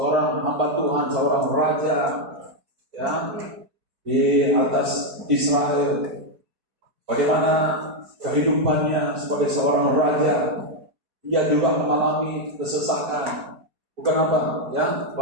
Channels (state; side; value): late; left; 4.6 ms